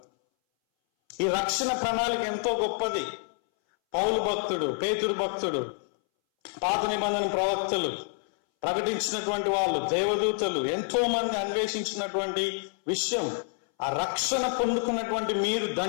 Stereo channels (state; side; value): silent; right; 59 dB below the other